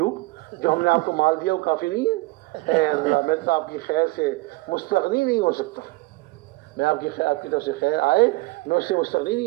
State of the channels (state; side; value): quieter; left; 22.0 dB